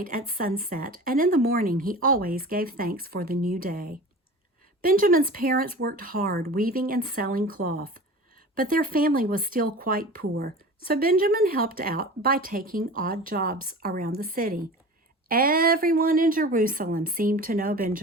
at sunset, and in the morning he always gave thanks for the new day. Benjamin's parents worked hard weaving and selling cloth, but their family was still quite poor, so Benjamin helped out by taking odd jobs around the city. Everyone in Jerusalem seemed to know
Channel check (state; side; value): normal; both; correlation 0.36